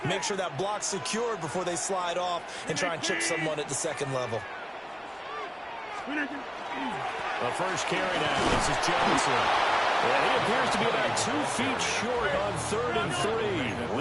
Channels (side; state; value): both; identical; correlation 1.00